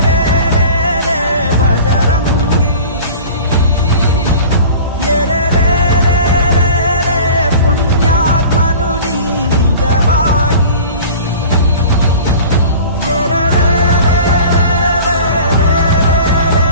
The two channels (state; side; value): inverted; both; correlation -0.40